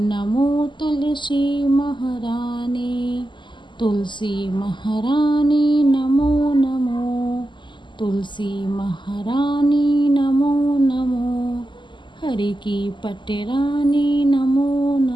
तुलसी महारानी, तुलसी महारानी नमो नमो। तुलसी महारानी नमो नमो, हरि की पटरानी नमो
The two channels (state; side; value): late; right; 0.23 ms